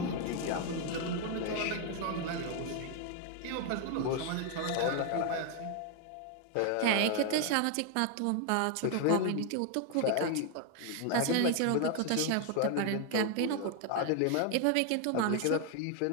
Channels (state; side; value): different; both; correlation 0.00